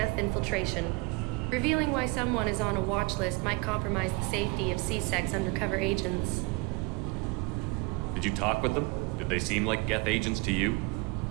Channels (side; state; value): left; quieter; 27.3 dB